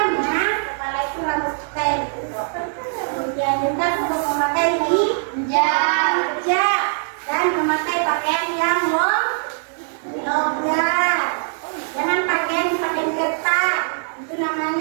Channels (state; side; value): silent; left; digital silence